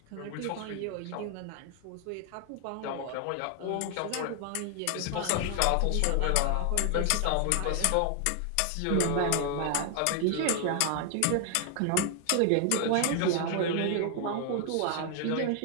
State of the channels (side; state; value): both; different; correlation 0.00